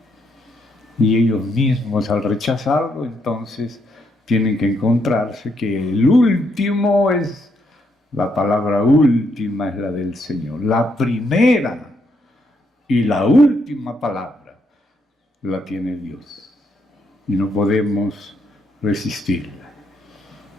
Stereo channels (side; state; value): both; normal; correlation 0.76